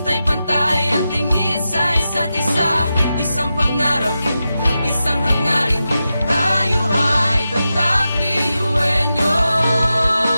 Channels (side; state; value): both; inverted; correlation -0.91